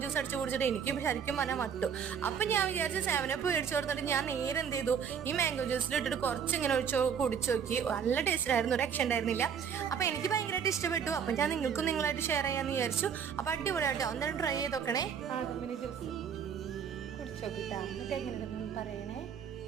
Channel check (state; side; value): quieter; left; 7.4 dB